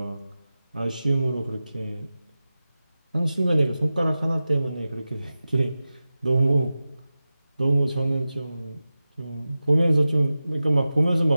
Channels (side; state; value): both; inverted; correlation -0.95